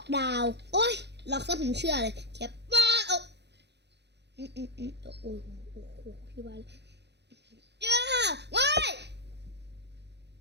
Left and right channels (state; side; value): late; left; 0.50 ms